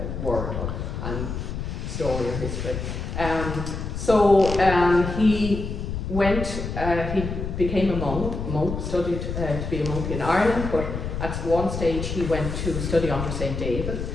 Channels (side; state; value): left; noise; rumble, 5 dB below the sound